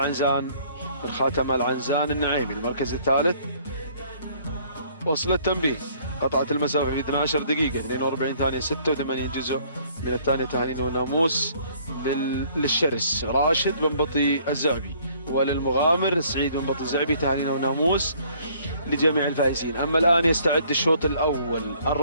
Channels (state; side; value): inverted; both; correlation -0.60